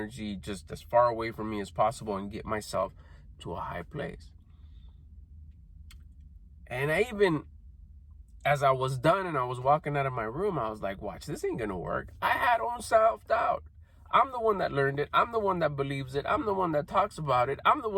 just as far away from me as possible and get myself to a high place. And I even, as I was done and I was walking out of my room, I was like, watch, this ain't gonna work. I had own self-doubt. I'm the one that learned it. I'm the one that believes it. I'm the one that talks about it. I'm the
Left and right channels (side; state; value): both; identical; correlation 1.00